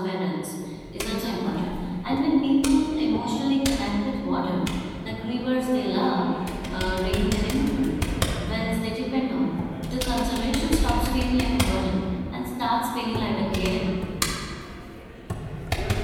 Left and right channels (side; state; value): both; identical; correlation 1.00